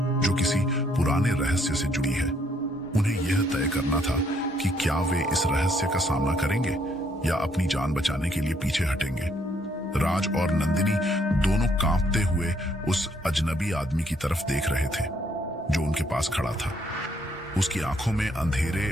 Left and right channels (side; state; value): both; normal; correlation 0.69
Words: जो किसी पुराने रहस्य से जुड़ी है। उन्हें यह तय करना था कि क्या वे इस रहस्य का सामना करेंगे या अपनी जान बचाने के लिए पीछे हटेंगे। राज और नंदिनी दोनों कांपते हुए उस अजनबी आदमी की तरफ देख रहे थे जो उनके पास खड़ा था। उसकी आंखों में अंधेरे